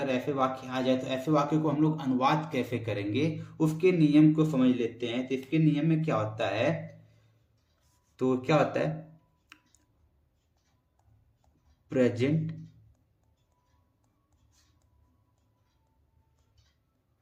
ऐसे वाक्य आ जाए तो ऐसे वाक्य को हम लोग अनुवाद कैसे करेंगे उसके नियम को समझ लेते हैं। तो इसके नियम में क्या होता है, तो क्या होता है, प्रेजेंट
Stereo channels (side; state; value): both; identical; correlation 1.00